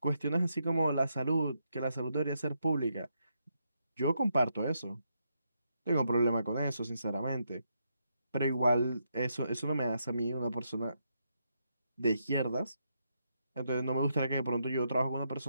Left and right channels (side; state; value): both; inverted; correlation -0.80